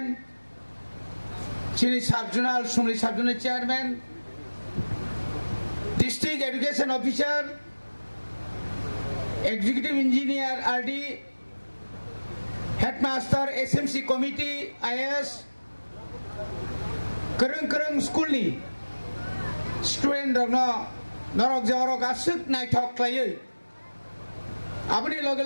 চিনি সাবজোনাল সুমরি subzonal chairman district education officer executive engineer RD headmaster SMC committee IAS करं स्कूलनि स्टूडेंट रंगनो नरक जरक आसुक नायथक खालायो आबनि लगे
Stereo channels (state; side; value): inverted; both; correlation -1.00